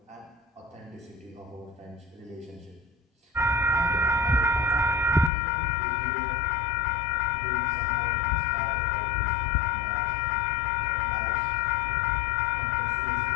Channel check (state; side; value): drops out; right; at 5.3 s